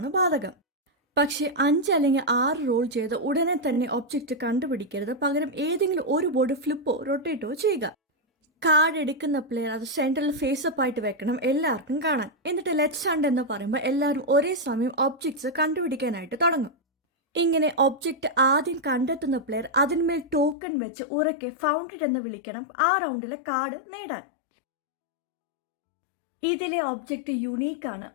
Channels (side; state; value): right; drops out; at 20.6 s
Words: ബാധകം. പക്ഷേ 5 അല്ലെങ്കിൽ 6 റോൾ ചെയ്ത് ഉടനെ തന്നെ ഒബ്ജക്റ്റ് കണ്ടുപിടിക്കരുത്. പകരം ഏതെങ്കിലും ഒരു ബോർഡ് ഫ്ലിപ്പോ റൊട്ടേറ്റോ ചെയ്യുക. കാർഡ് എടുക്കുന്ന പ്ലെയർ അത് സെൻട്രൽ ഫേസപ്പ് ആയിട്ട് വെക്കണം, എല്ലാവർക്കും കാണാൻ. എന്നിട്ട് ലെറ്റ്സ് ഹണ്ട് എന്ന് പറയുമ്പോൾ എല്ലാവരും ഒരേ സമയം ഒബ്ജക്ട്സ് കണ്ടുപിടിക്കാനായിട്ട് തുടങ്ങും. ഇങ്ങനെ ഒബ്ജക്റ്റ് ആദ്യം കണ്ടെത്തുന്ന പ്ലെയർ അതിന്മേൽ ടോക്കൺ വെച്ച് ഉറക്കെ ഫൗണ്ടഡ് എന്ന് വിളിക്കണം ആ റൗണ്ടിലെ കാർഡ് നേടാൻ. ഇതിലെ ഒബ്ജക്റ്റ് യുണീക്കാണ്.